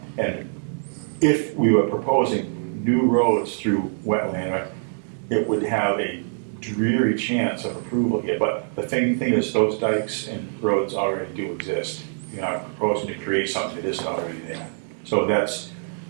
and if we were proposing new roads through wetland, it would have a dreary chance of approval here. But the thing is, those dikes and roads already do exist. You're not proposing to create something that isn't already there. So that's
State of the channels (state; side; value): silent; left; digital silence